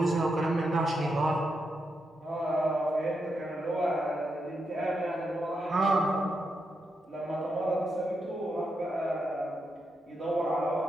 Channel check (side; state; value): both; normal; correlation 0.84